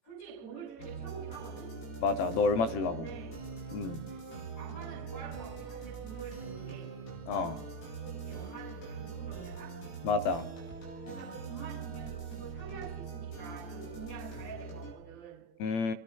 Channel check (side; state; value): right; late; 18 ms